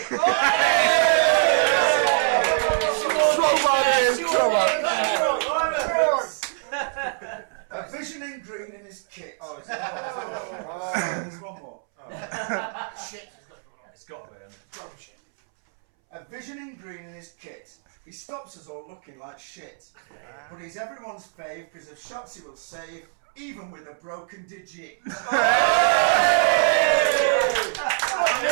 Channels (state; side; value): silent; left; 62 dB below the other